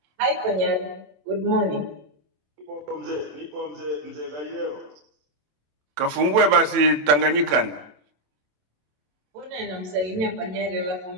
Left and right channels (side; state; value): left; late; 27 ms